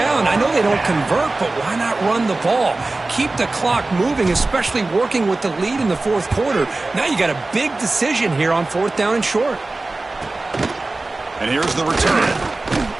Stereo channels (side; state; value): left; quieter; 3.2 dB